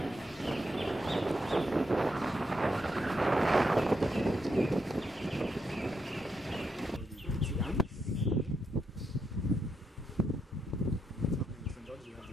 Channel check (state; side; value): normal; both; correlation 0.81